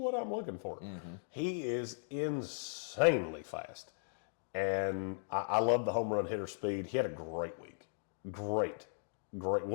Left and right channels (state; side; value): silent; right; digital silence